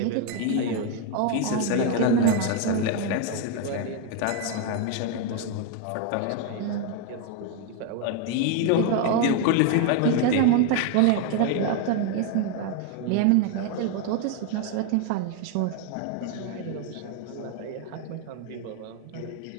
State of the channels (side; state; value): both; different; correlation 0.01